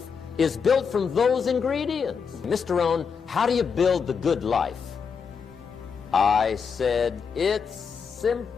is built from those ingredients. Mr. Rohn, how do you build the good life? I said, it's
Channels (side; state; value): right; quieter; 6.1 dB